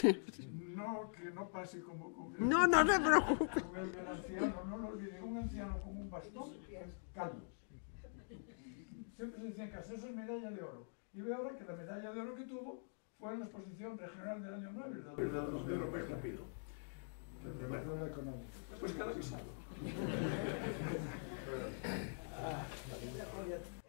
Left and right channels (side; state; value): right; silent; digital silence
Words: No, que no pase como con el, no se preocupe. Con el del anciano, no lo olviden, un anciano con un bastón calvo. Siempre se decían que eso es medalla de oro. Y veo ahora que la medalla de oro que tuvo fue en la exposición regional del año 9, el de Europeo Rápido. Pues cada avisado.